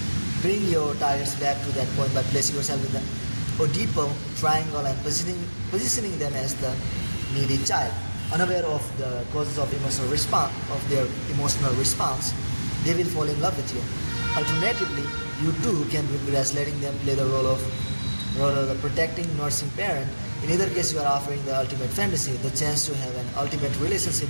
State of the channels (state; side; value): inverted; both; correlation -1.00